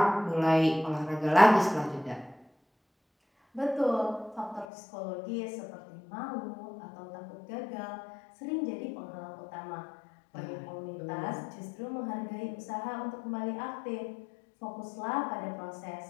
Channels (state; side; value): drops out; right; at 4.7 s